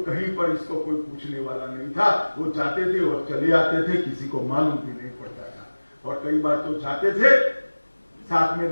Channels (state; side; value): inverted; both; correlation -1.00